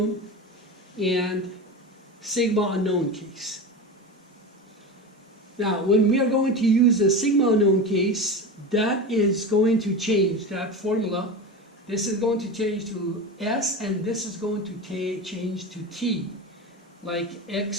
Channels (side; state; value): both; normal; correlation 0.26